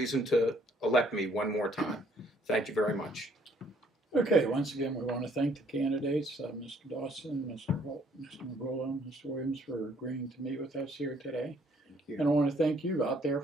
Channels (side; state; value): both; normal; correlation 0.64